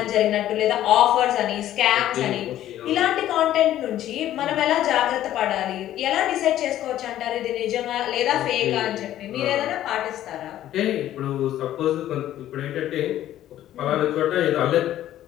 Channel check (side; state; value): right; quieter; 12.7 dB